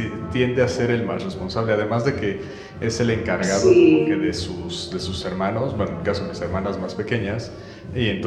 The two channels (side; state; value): both; identical; correlation 1.00